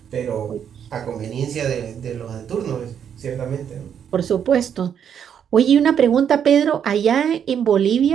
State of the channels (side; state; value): left; quieter; 8.4 dB